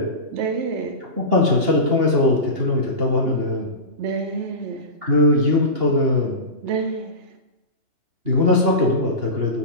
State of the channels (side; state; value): left; late; 2.8 ms